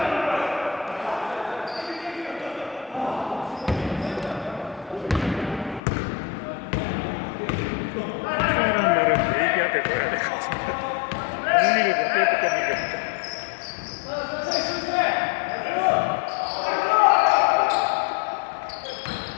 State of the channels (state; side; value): drops out; right; at 5.8 s